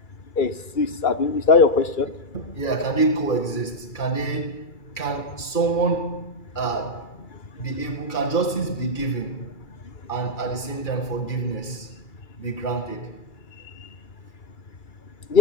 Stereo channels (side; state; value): right; late; 2.3 ms